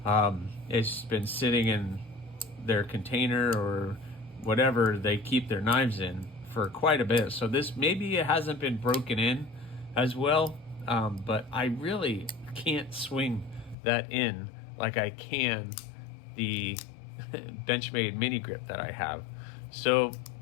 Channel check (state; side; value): drops out; right; at 13.8 s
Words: It's been sitting in their container or whatever they keep their knives in for quite a bit. So this, maybe it hasn't been broken in as well, but I really can't swing that in like I can the Benchmade mini grip that I have. So